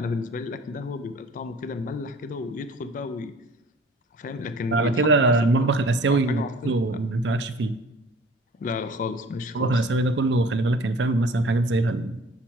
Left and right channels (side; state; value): both; normal; correlation 0.48